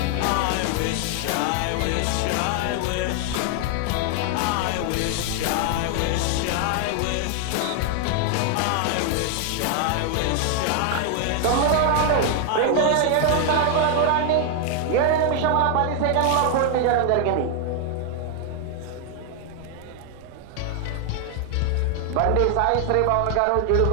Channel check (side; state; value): both; different; correlation 0.00